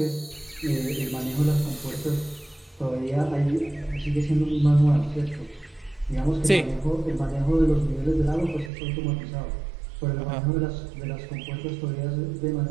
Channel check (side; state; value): left; drops out; at 8.7 s